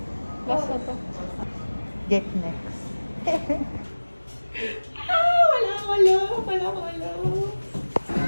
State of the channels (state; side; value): inverted; both; correlation -1.00